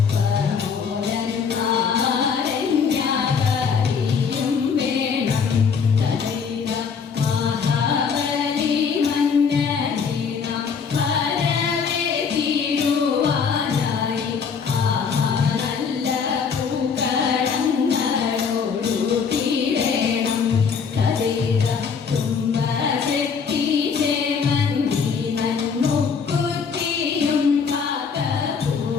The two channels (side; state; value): right; quieter; 6.1 dB